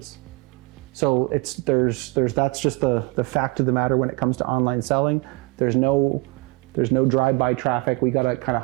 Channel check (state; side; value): quieter; left; 25.6 dB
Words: So that's just the fact of the matter when it comes to online selling. There's no drive-by traffic. We gotta kind